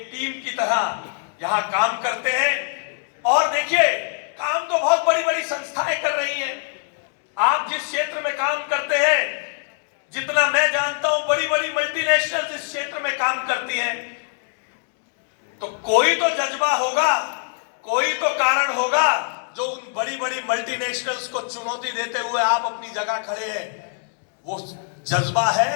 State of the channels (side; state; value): right; silent; digital silence